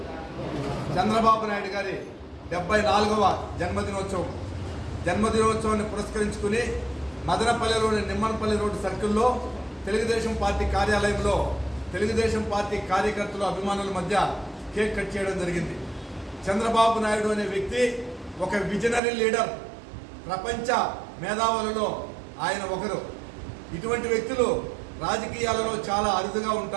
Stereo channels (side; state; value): left; drops out; at 19.0 s